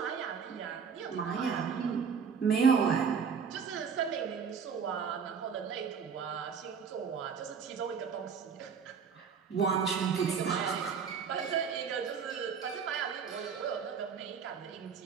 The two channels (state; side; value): quieter; left; 6.4 dB